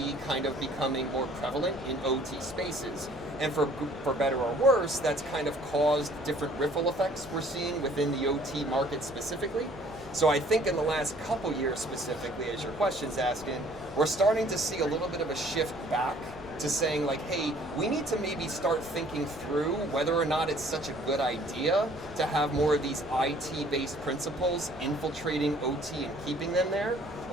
kind of becoming more prevalent in OT spaces. And for better or worse, that's kind of caused different ripple effects we're seeing within the OT market specifically. So I think in the last couple years specifically, as your question's asking, we're starting to see a little bit of a shift back to saying like, hey, we need to maybe start thinking through whether or not it's such a good idea to have more of these IT-based principles infiltrating OT and keeping them there,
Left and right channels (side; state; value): both; normal; correlation 0.57